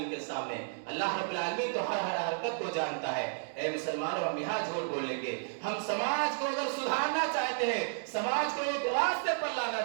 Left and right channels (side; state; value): left; silent; digital silence